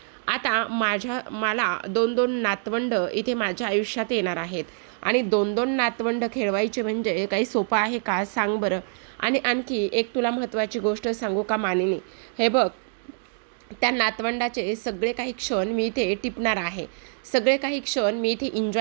आता मला 2-2 नातवंड इथे माझ्या आयुष्यात येणार आहेत आणि 2-2 नातवंड खेळवायचे म्हणजे काही सोपं आहे का, सांग बरं. आणि आणखी एक तुला महत्त्वाची गोष्ट सांगू का मानिनी, हे बघ, त्या नातवंडाचे सगळे काही क्षण मी इथे टिपणार आहे, सगळे काही क्षण मी इथे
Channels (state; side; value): silent; left; 61 dB below the other